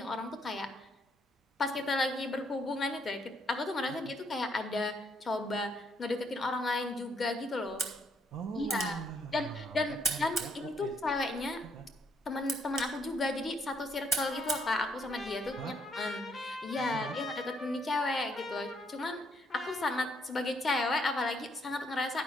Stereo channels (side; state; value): both; normal; correlation 0.72